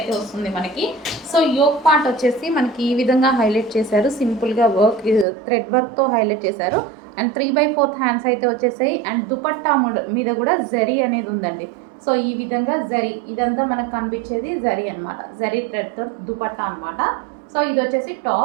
వస్తుంది మనకి. సో యోక్ పార్ట్ వచ్చేసి మనకి ఈ విధంగా హైలైట్ చేశారు. సింపుల్గా వర్క్ థ్రెడ్ వర్క్తో హైలైట్ చేశారు. అండ్ 3/4 హ్యాండ్స్ అయితే వచ్చేసాయి. అండ్ దుపట్టా మీద కూడా జరీ అనేది ఉందండి. సో ఈ విధంగా జరీ ఇదంతా మనకు కనిపించేది జరీ అనమాట. జరీ థ్రెడ్తో దుపట్టా అనమాట. సో ఇది వచ్చేసి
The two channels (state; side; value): drops out; left; at 5.2 s